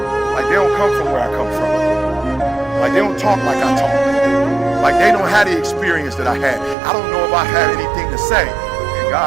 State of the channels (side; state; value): left; drops out; at 6.8 s